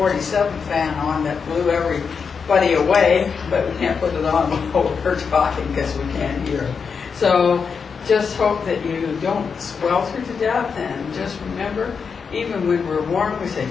fan on that blew everybody away, but we can't put it on while we're talking because we can't hear. So just hope that you don't swelter to death, and just remember, even when we're warm, we say,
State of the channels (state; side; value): quieter; right; 5.8 dB